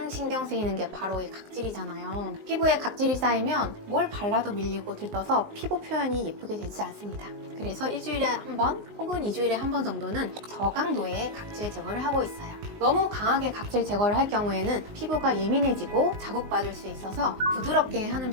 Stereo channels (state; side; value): late; left; 19 ms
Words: 신경 쓰이는 게 바로 이 각질이잖아요. 피부에 각질이 쌓이면 뭘 발라도 밀리고 들떠서 피부 표현이 예쁘게 되지 않습니다. 그래서 일주일에 한 번 혹은 2주일에 한 번 정도는 저강도의 각질 제거를 하고 있어요. 너무 강하게 각질 제거를 할 경우에는 피부가 예민해지고 자극받을 수 있어서 부드럽게 하는